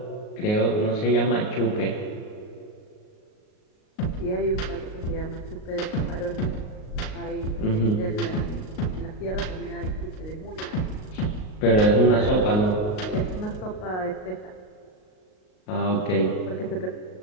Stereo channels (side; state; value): right; late; 38 ms